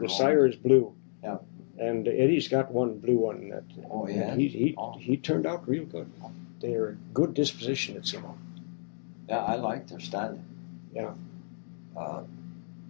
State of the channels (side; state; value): right; silent; digital silence